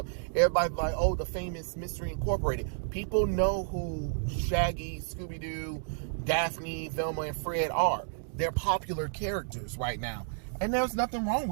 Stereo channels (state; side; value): silent; left; digital silence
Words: everybody's like, oh, the famous Mystery Incorporated. People know who Shaggy, Scooby-Doo, Daphne, Velma, and Fred are. They're popular characters right now. And there's nothing wrong